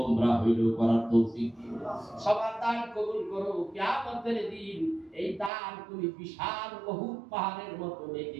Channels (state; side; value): drops out; left; at 5.5 s